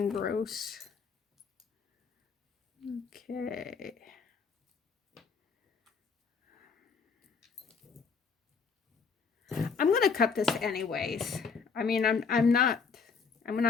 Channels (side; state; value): right; quieter; 5.5 dB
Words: gross. Okay. I'm gonna cut this anyways. I mean, I'm not